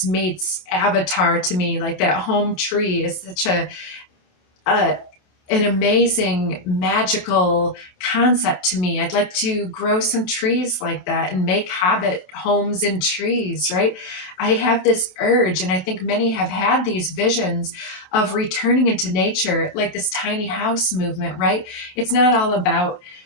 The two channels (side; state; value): right; late; 28 ms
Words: meets Avatar to me. Like, that home tree is such an amazing magical concept to me. I'd like to grow some trees like that and make hobbit homes in trees, right? I have this urge, and I think many have had these visions of returning into nature, like this tiny house movement, right? It's not all about